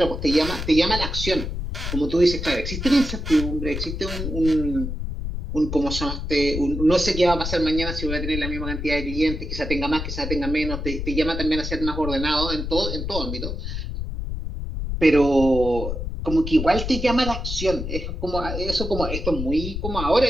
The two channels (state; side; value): noise; left; rumble, 5 dB below the sound